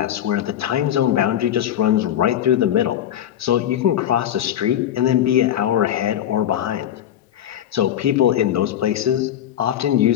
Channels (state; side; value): quieter; right; 10.9 dB